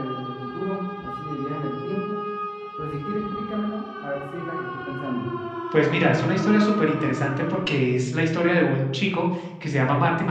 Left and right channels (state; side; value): identical; both; correlation 1.00